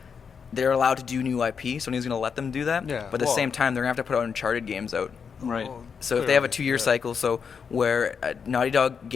allowed to do new IP, so Sony's going to let them do that. Yeah. But at the same time, they're going to have to put out Uncharted games out. Right. So if they have a 2-year cycle, so where a Naughty Dog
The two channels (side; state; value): right; quieter; 6.3 dB